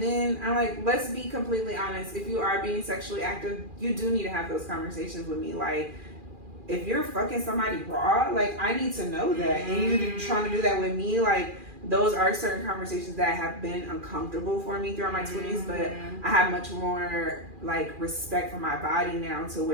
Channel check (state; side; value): late; left; 2.4 ms